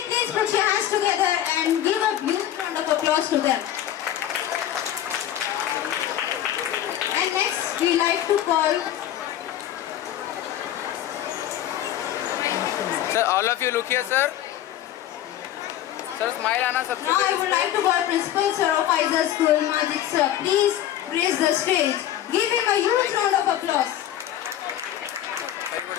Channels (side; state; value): right; quieter; 11.9 dB